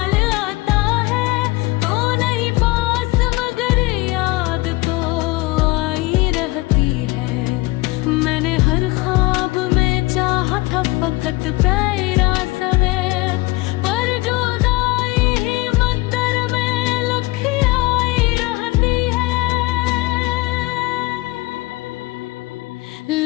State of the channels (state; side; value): quieter; right; 21.7 dB